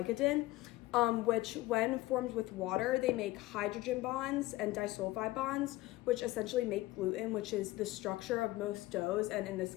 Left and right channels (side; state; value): right; quieter; 18.2 dB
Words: which when formed with water, they make hydrogen bonds and disulfide bonds, which essentially make gluten, which is the structure of most doughs, and in this